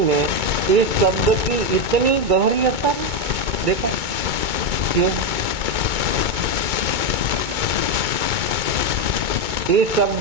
में इस शब्द की इतनी गहरी असर देखा क्यों? इस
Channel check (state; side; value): late; left; 2.2 ms